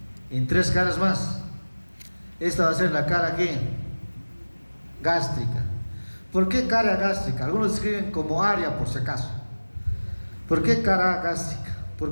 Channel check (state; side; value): inverted; both; correlation -1.00